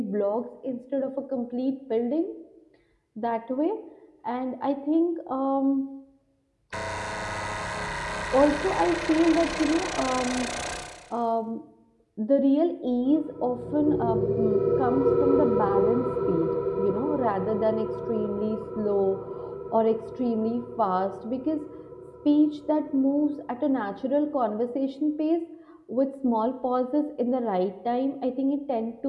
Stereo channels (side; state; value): both; identical; correlation 1.00